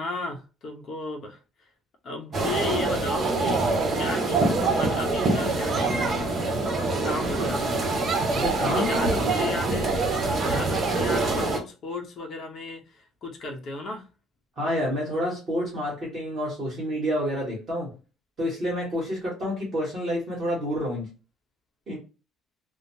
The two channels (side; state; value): both; normal; correlation 0.61